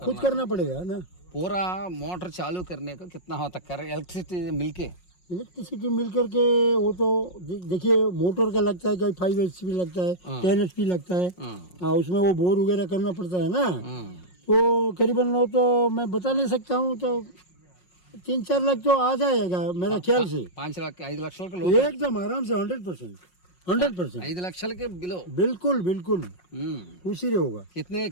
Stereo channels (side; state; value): right; late; 5.5 ms